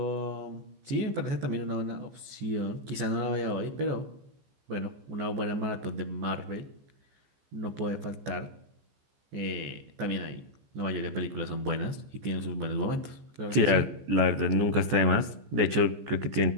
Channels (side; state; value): left; late; 15 ms